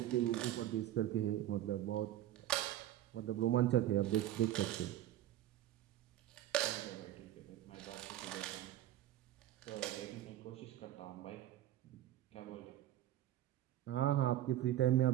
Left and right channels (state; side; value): quieter; left; 13.1 dB